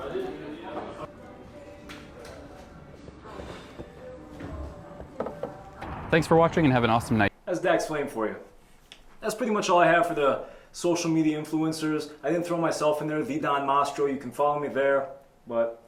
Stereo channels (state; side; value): identical; both; correlation 1.00